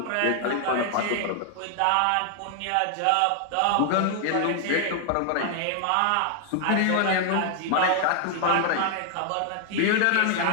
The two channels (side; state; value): both; different; correlation 0.00